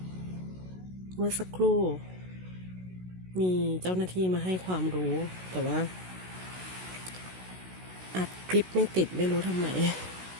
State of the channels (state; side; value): late; left; 16 ms